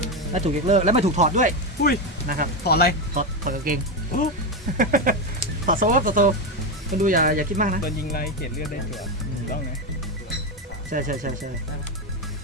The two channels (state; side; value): normal; both; correlation 0.11